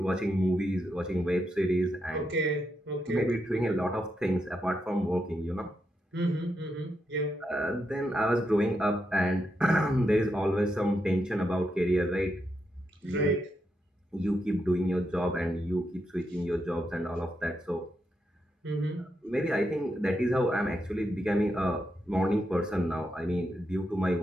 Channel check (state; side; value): normal; both; correlation 0.83